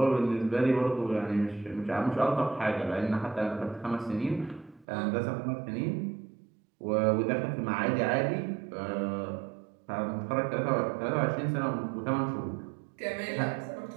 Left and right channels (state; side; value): drops out; left; at 4.9 s